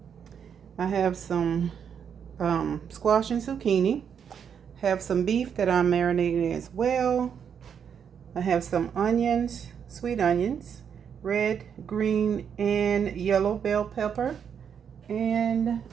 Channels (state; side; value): quieter; left; 7.6 dB